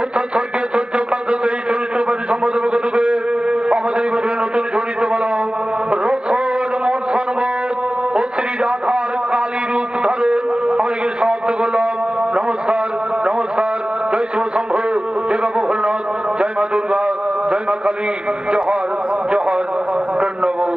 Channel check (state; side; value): late; left; 0.049 ms